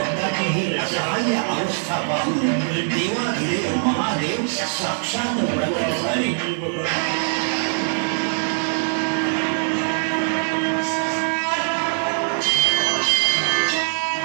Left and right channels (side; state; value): left; silent; 64 dB below the other